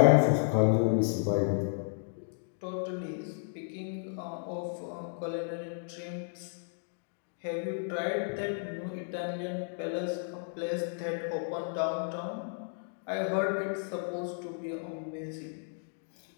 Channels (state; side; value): silent; right; digital silence